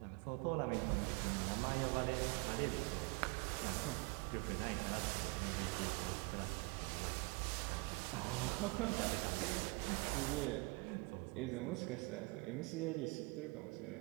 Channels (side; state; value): left; quieter; 28.9 dB